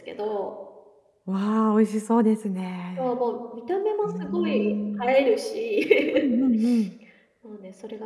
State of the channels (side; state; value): both; identical; correlation 1.00